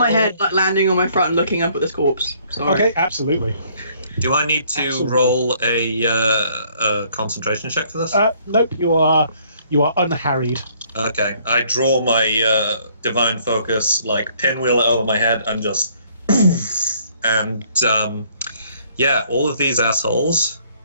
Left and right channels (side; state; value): both; inverted; correlation -0.63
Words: roll- head, like landing on my front and looking up at this corpse. Sorry. Okay, absolutely. Do I need to Absolutely. roll a concentration check for this? Nope, you are unharried. Okay, I draw my divine focus, like pinwheel it over my head, and just, and yeah, all of these assholes,